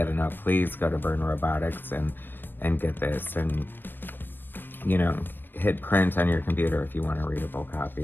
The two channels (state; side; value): late; right; 0.095 ms